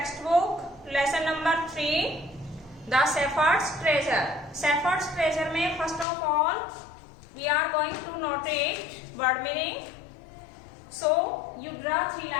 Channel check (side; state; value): right; drops out; at 6.1 s